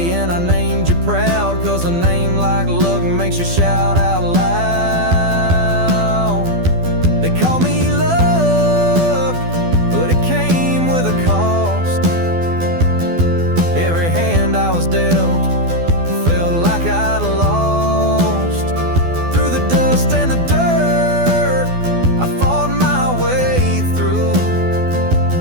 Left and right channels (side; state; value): left; late; 12 ms